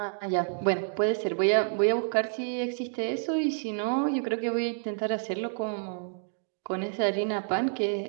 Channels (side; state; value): left; silent; digital silence